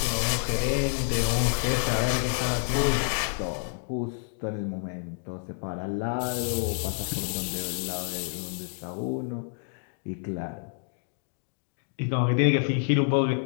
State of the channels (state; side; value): silent; right; 56 dB below the other